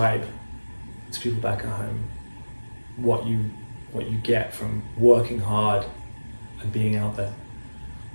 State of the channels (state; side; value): inverted; both; correlation -1.00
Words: to people back at home what you get from working hard and being out there.